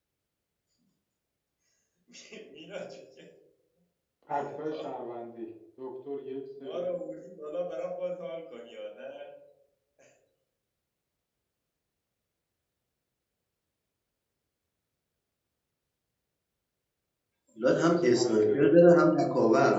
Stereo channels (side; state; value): both; identical; correlation 1.00